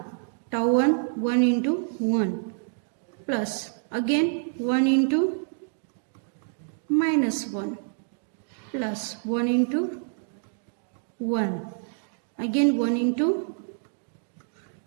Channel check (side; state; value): left; silent; digital silence